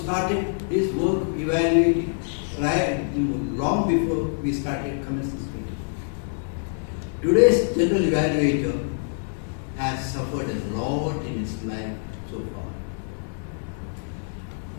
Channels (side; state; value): right; silent; digital silence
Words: his work evaluating long before we started commencing speech. Today's general evaluator has suffered a lot in his life so far.